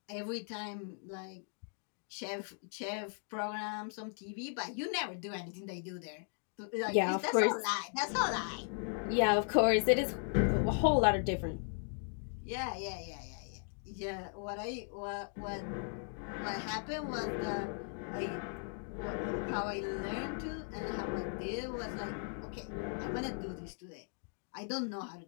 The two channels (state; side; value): silent; right; 53 dB below the other